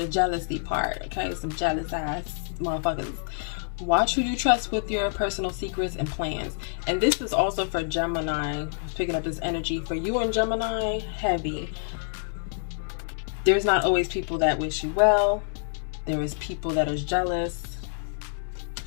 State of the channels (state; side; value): silent; right; digital silence